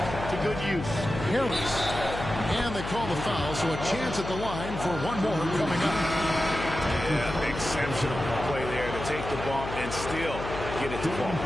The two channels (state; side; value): noise; left; hum, 8 dB below the sound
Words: to good use. Harris. And they call the foul, so a chance at the line for one more coming up. Yeah, exceptional play there to take the bump and still get it to fall.